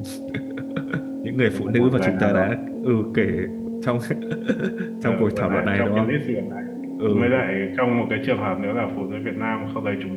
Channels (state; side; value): identical; both; correlation 1.00